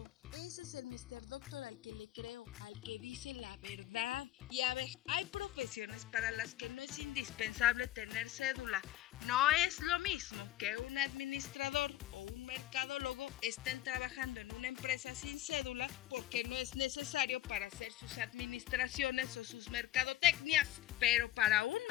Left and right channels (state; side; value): quieter; right; 14.2 dB